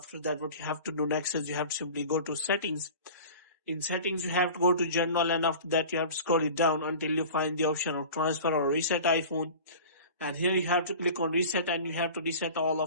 that, what you have to do next is you have to simply go to settings. In settings, you have to go to general, and after that, you have to scroll it down until you find the option of transfer or reset iPhone. And here you have to click on reset, and you have to reset all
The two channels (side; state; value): both; inverted; correlation -0.38